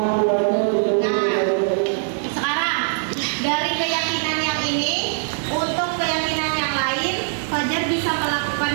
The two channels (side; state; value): left; silent; digital silence